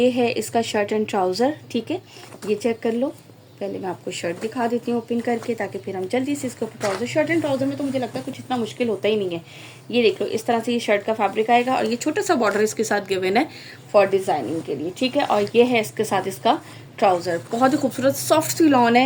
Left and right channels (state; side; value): identical; both; correlation 1.00